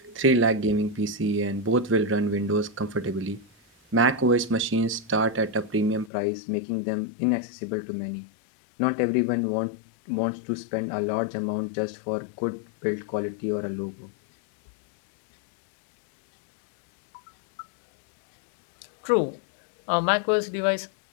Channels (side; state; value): right; drops out; at 6.1 s